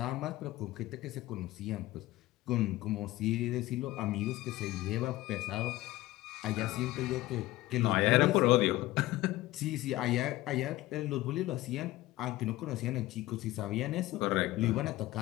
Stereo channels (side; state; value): right; quieter; 17.4 dB